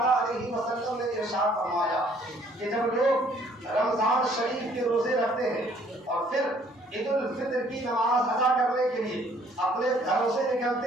علیہ وسلم نے ارشاد فرمایا کہ جب لوگ رمضان شریف کے روزے رکھتے ہیں اور پھر عید الفطر کی نماز ادا کرنے کے لیے اپنے گھروں سے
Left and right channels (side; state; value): both; normal; correlation 0.61